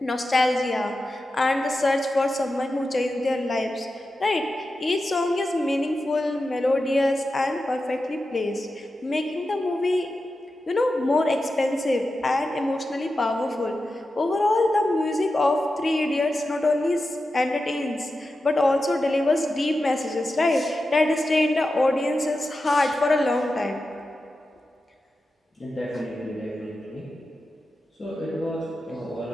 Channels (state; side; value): normal; both; correlation 0.91